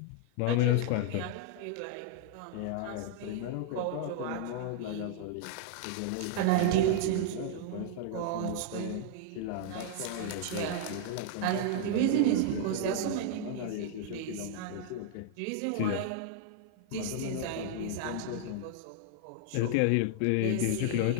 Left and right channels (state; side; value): different; both; correlation -0.01